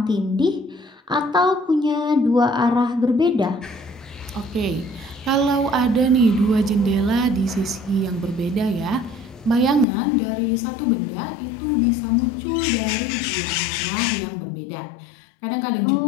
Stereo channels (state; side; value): drops out; right; at 9.9 s